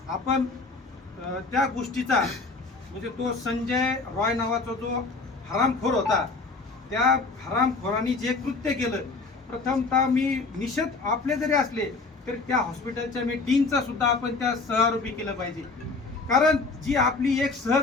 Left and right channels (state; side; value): quieter; right; 3.9 dB